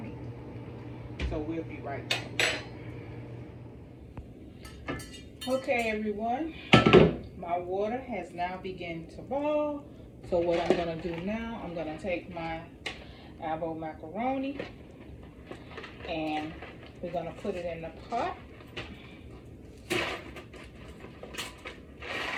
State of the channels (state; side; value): identical; both; correlation 1.00